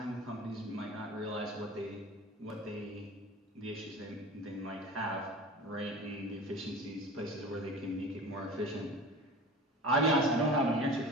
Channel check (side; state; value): both; normal; correlation 0.36